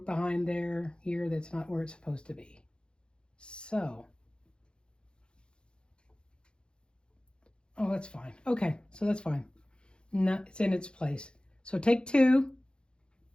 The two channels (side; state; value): right; late; 0.052 ms